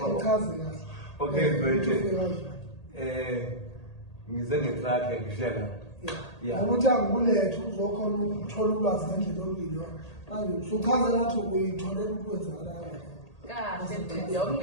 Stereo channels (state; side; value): late; right; 1.8 ms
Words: Awuchazi kahle. Okay, mfethu. Ngize ngetruck ngishiya la. Yeah. Ukuthi angikulethe uzokhona ukuthola ulwazi ngendlela oluyilo. Manje usuchaza nathi uyitholela ukwenzakala. Kahle